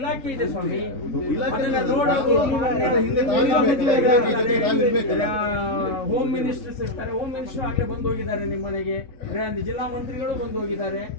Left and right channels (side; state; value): right; late; 3.6 ms